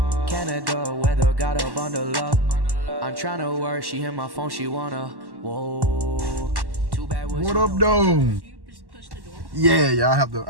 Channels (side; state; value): left; late; 1.1 ms